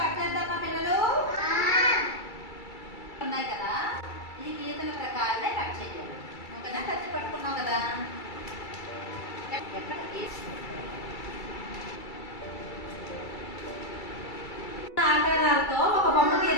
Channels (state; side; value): late; right; 2.3 ms